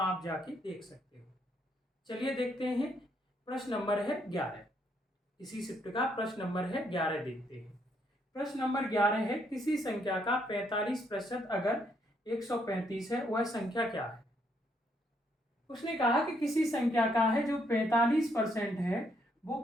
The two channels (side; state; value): both; normal; correlation 0.73